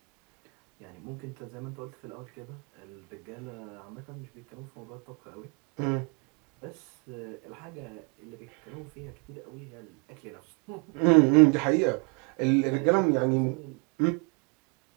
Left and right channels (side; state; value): left; quieter; 34.0 dB